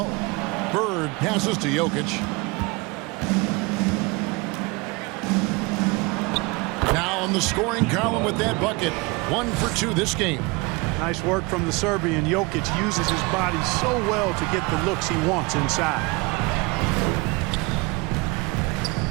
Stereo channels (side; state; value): left; quieter; 25.8 dB